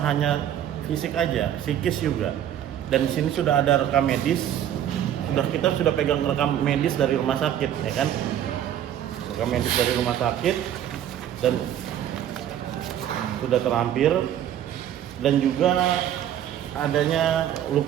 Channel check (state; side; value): quieter; left; 10.7 dB